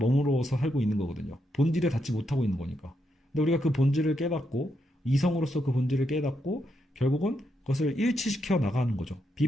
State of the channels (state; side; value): normal; both; correlation 0.81